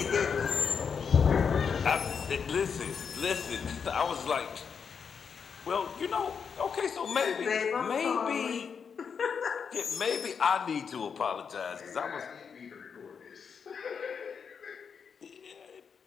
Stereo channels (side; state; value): right; quieter; 6.4 dB